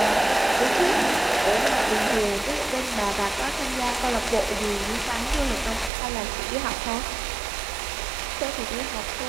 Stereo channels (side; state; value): left; drops out; at 5.9 s